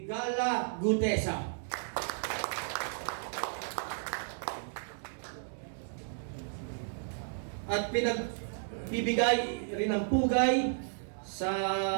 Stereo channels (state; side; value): silent; left; digital silence